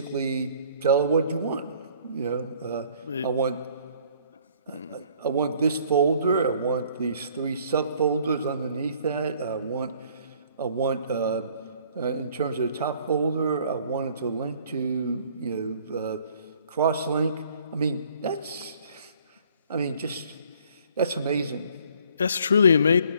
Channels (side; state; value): both; inverted; correlation -0.58